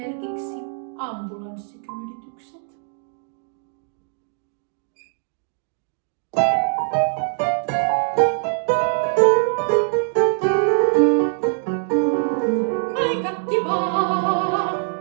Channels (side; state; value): left; silent; digital silence